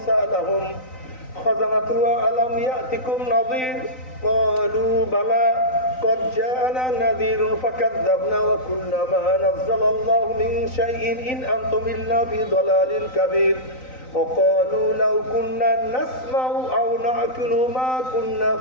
সালাহুম খাযানাতুহা আলাম ইয়াতিকুম নাযীর ক্বালু বালা قد جاءنا نذير فكذبنا وقلنا ما نزل الله من شيء إن أنتم إلا في ضلال كبير وقالوا لو كنا نسمع أو نعقل ما كنا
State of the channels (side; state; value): right; late; 3.9 ms